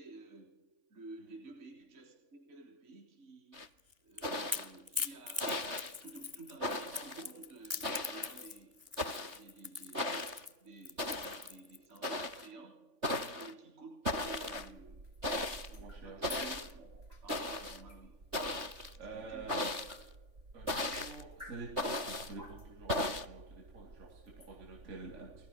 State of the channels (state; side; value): late; left; 3.5 ms